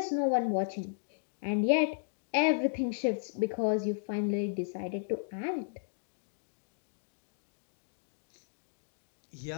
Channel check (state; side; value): silent; right; digital silence